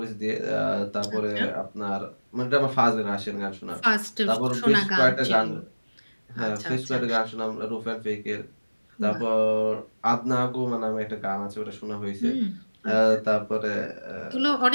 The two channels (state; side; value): inverted; both; correlation -1.00